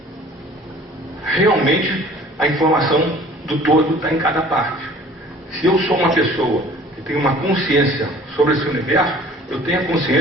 realmente a informação do todo está em cada parte. Se eu sou uma pessoa que tem uma consciência sobre esse universo, eu tenho a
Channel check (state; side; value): normal; both; correlation 0.50